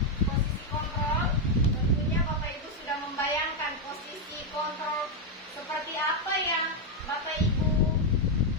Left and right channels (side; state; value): both; normal; correlation 0.02